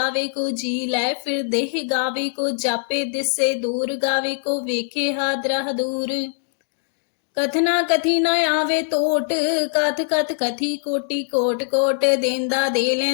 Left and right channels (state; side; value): silent; right; digital silence